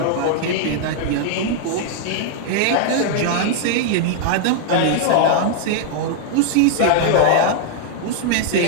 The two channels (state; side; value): different; both; correlation -0.01